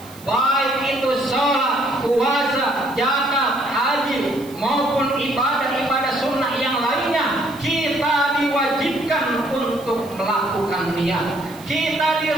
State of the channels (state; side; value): noise; right; hiss, 21 dB below the sound